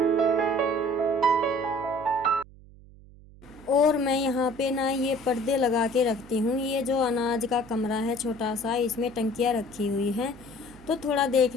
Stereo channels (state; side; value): noise; right; hum, 22 dB below the sound